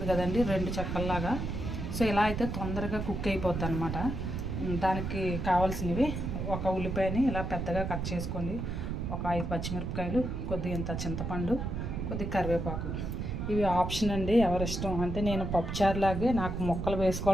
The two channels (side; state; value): right; noise; rumble, 3 dB below the sound